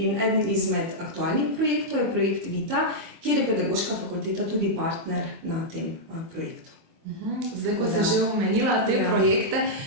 eden izmed aktualnih projektov je projekt Vita, kjer je pedagoška fakulteta tudi partner na tem projektu. Zdaj, ko si že omenila te projekte,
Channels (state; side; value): late; left; 24 ms